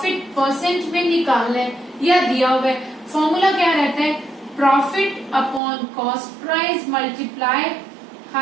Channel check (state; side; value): drops out; left; at 5.6 s